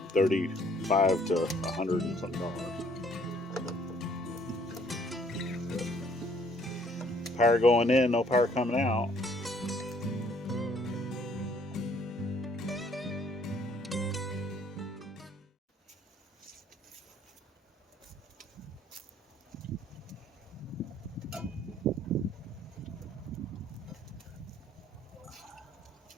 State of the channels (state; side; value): normal; both; correlation 0.62